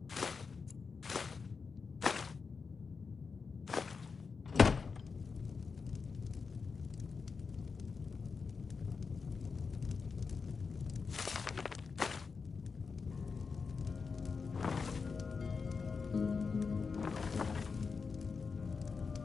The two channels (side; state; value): right; quieter; 5.1 dB